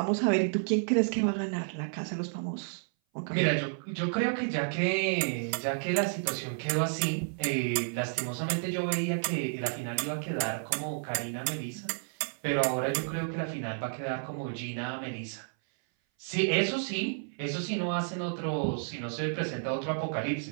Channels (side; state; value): left; silent; 57 dB below the other